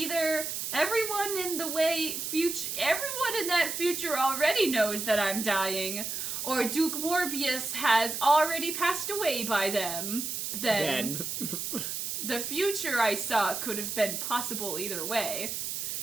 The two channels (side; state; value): right; noise; hiss, 4 dB below the sound